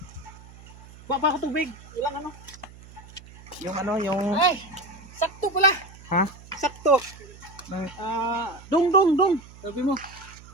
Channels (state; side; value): noise; right; hum, 20 dB below the sound